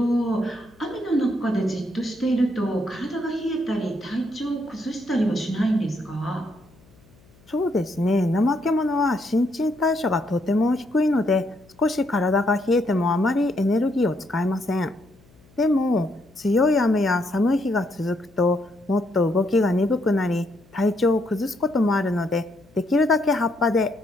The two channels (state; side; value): noise; left; hum, 29 dB below the sound